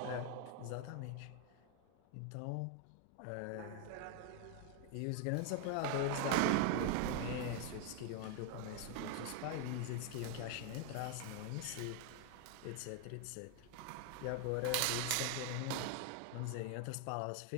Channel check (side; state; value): both; different; correlation 0.00